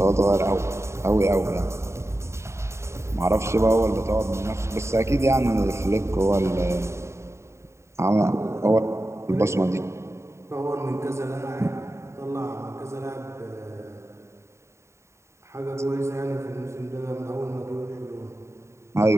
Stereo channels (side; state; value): left; late; 0.13 ms